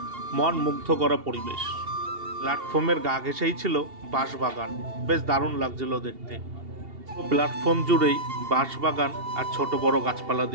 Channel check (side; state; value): left; late; 2.8 ms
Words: মন মুগ্ধ করা পরিবেশ। প্ল্যাটফর্মের গা ঘেঁষেই ছিল বাঁশবাগান, বেশ দারুণ লাগছিল দেখতে। প্ল্যাটফর্ম জুড়েই বাঁশবাগান আর ছোট বড় গাছপালা